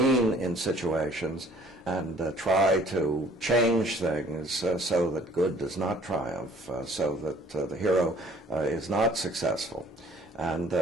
in situations and try to change things so that good does not triumph, so that the hero is not successful. And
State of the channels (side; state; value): both; normal; correlation 0.56